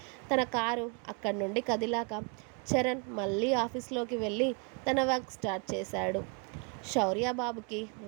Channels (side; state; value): left; quieter; 33.7 dB